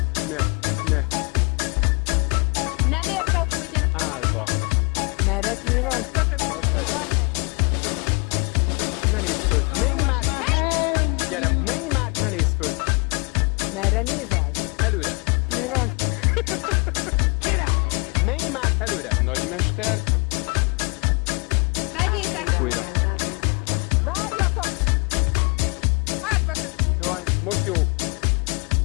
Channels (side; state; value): right; quieter; 30.6 dB